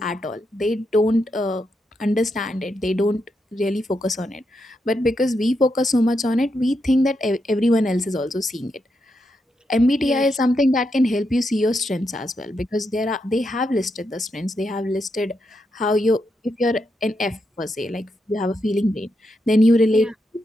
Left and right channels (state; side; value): normal; both; correlation 0.83